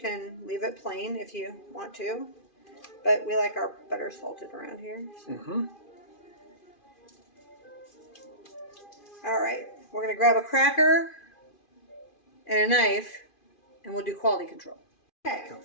leave it plain if you want to. But we like our butter salted around here. So. All right. We're going to grab a cracker and a knife and we'll do quality control. Okay.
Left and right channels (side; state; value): right; late; 2.4 ms